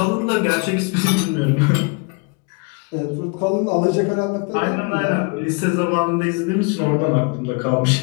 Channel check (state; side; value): quieter; right; 31.7 dB